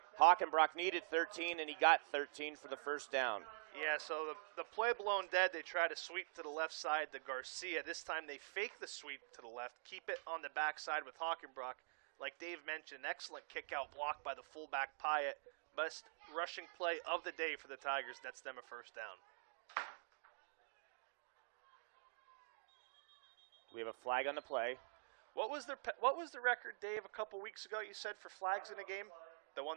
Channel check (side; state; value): left; silent; digital silence